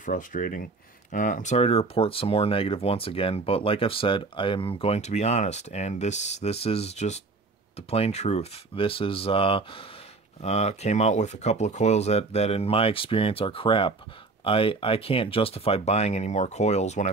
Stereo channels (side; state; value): left; quieter; 3.7 dB